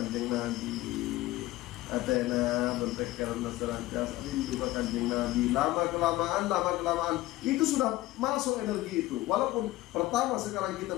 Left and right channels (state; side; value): quieter; right; 17.4 dB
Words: Nabi, Atena berpikiran selantiasa rindu ke kanjeng Nabi. Lama kelamaan itu sudah masuk energi itu. Walaupun pertama sekarang kita